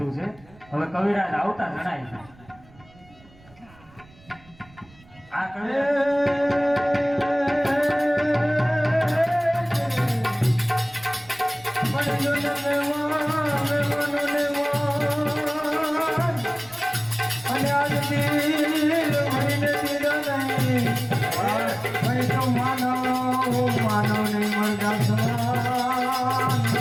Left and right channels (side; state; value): right; noise; rumble, 26 dB below the sound